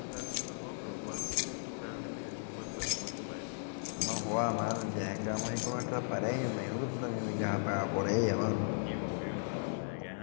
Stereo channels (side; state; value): right; silent; digital silence